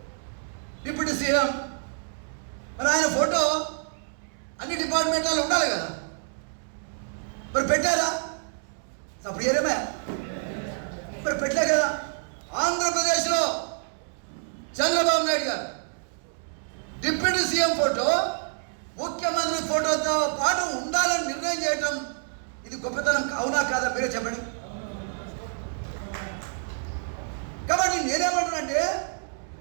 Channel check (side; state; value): left; silent; 60 dB below the other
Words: డిప్యూటీ సీఎం, మరి ఆయన ఫోటో అన్ని డిపార్ట్మెంట్లలో ఉండాలి కదా, మరి పెట్టారా? అప్పుడు ఏరేమే మరి పెట్టలే కదా. ఆంధ్రప్రదేశ్లో చంద్రబాబు నాయుడు గారు డిప్యూటీ సీఎం ఫోటో ముఖ్యమంత్రి ఫోటోతో పాటు ఉండాలని నిర్ణయం చేయటం ఇది గొప్పతనం అవునా కాదా? మీరే చెప్పండి. కాబట్టి నేనేమంటానంటే